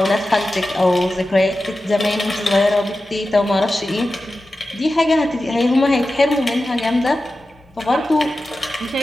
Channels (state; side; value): normal; both; correlation 0.93